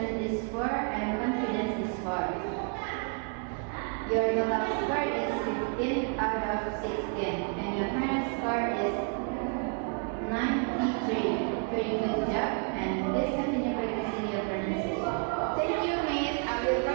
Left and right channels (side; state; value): left; quieter; 38.8 dB